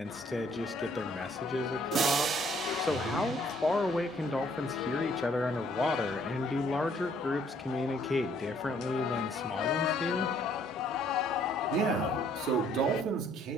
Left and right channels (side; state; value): both; normal; correlation 0.64